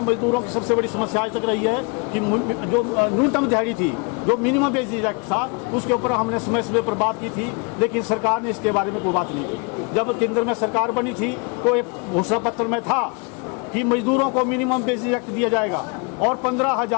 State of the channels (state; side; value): quieter; right; 33.3 dB